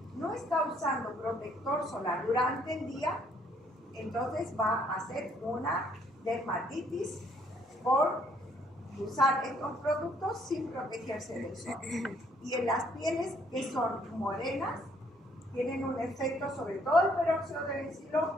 no está usando protector solar durante el día, entonces va a hacer una dermatitis por usar estos productos sin protegerse del sol. Y en las pieles que son morenas, tienen un efecto, sobre todo el peróxido de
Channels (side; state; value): both; normal; correlation 0.66